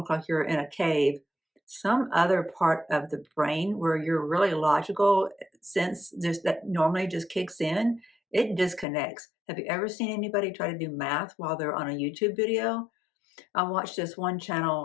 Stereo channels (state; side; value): drops out; right; at 8.8 s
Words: like you're in a cave, some other part of the brain where you're really logical sense just that normally just kicks in, it disconnects. Have you ever seen anybody try to do math while they're on a YouTube video? I watched this one